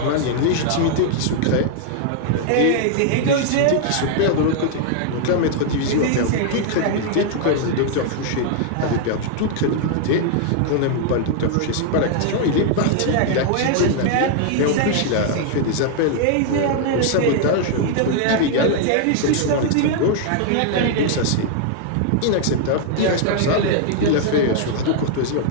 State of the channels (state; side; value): different; both; correlation 0.00